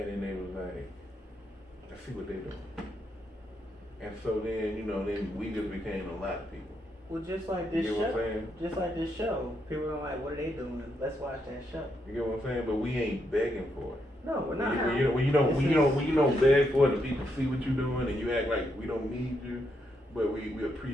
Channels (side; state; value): both; normal; correlation 0.79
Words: then they was like, "Let's see what they doing." And so then, then we just became a lot of people. Well, just like this You get what I'm show. saying? Just like this show. People are like, what are they doing? Let's watch that show. You get what I'm saying? But we ain't begging for it. No, we're not. When you don't beg for it, and people see what you're doing, and you act like we don't need you, but we